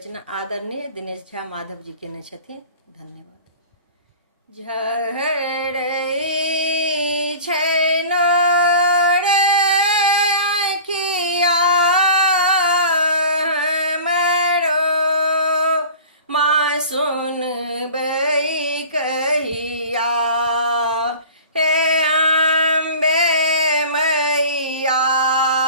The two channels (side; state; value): both; inverted; correlation -0.40